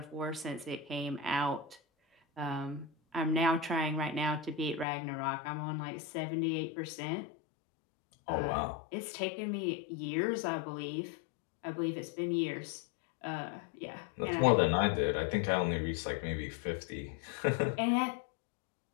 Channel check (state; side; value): drops out; right; at 4.9 s